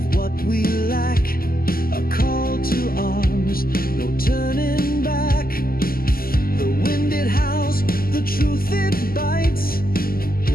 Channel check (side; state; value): right; late; 0.42 ms